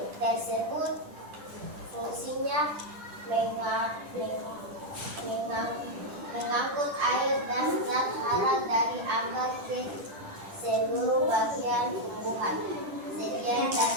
tersebut? Fungsinya mengangkut air dan zat hara dari akar ke seluruh bagian tumbuhan. Sekian dan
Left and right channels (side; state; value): left; late; 10 ms